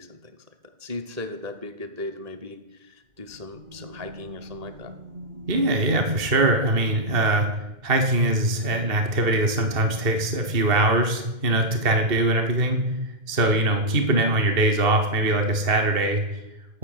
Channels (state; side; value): late; left; 2.1 ms